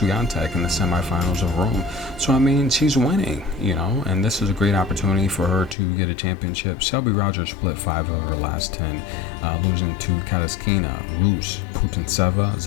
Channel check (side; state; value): right; drops out; at 5.8 s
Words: in the semifinals of Rome. So, I mean, she's winning, you know, and this is a great opportunity for her to get a championship. Shelby Rogers split 5 of her last 10, losing to Kataskina, Rus, Putintseva,